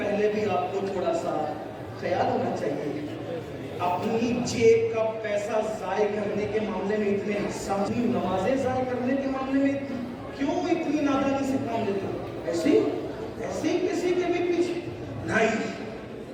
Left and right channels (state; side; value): identical; both; correlation 1.00